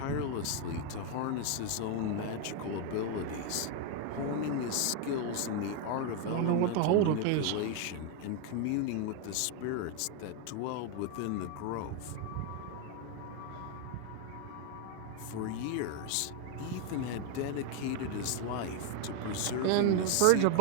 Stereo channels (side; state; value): both; different; correlation 0.01